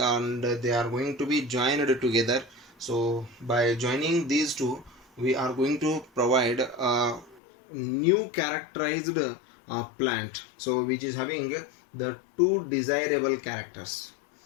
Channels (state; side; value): drops out; right; at 7.4 s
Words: they are going to be joined together. So by joining these two, we are going to provide a new characterized plant, so which is having the two desirable characters.